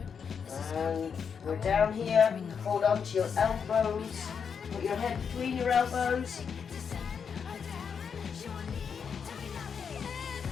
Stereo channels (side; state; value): right; quieter; 6.6 dB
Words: this is And we're down here, hold on to your elbows, put your head between your elbows.